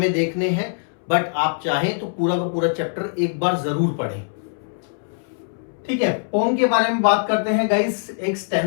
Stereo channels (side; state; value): right; silent; 64 dB below the other